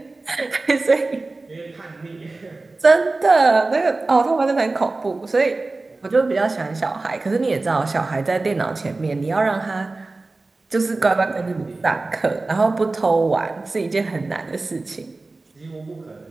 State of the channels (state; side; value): quieter; left; 3.4 dB